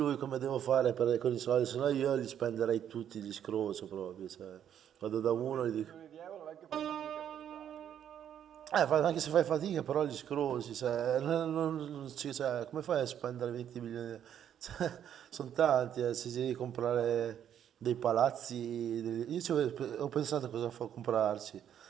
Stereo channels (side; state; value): left; quieter; 9.6 dB